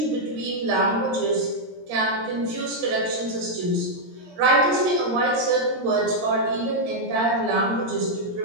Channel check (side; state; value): left; late; 17 ms